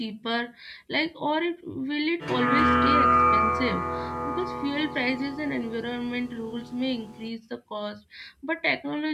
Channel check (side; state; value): both; identical; correlation 1.00